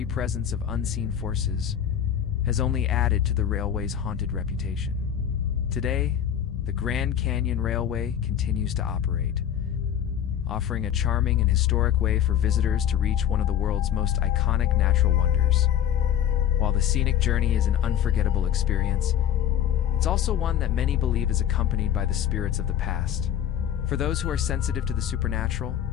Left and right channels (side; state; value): right; quieter; 9.9 dB